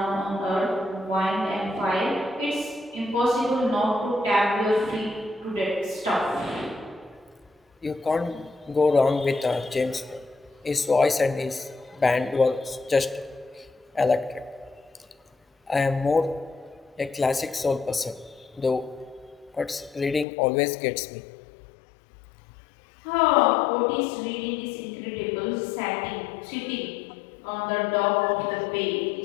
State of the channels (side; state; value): right; drops out; at 20.2 s